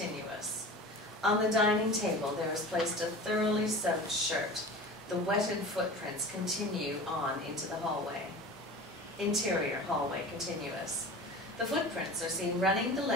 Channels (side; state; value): both; normal; correlation 0.36